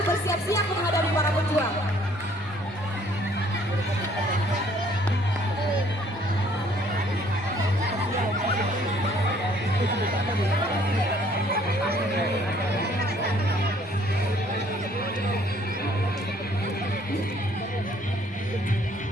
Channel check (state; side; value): normal; both; correlation 0.60